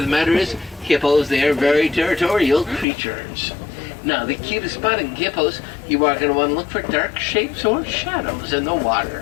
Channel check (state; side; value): drops out; right; at 2.9 s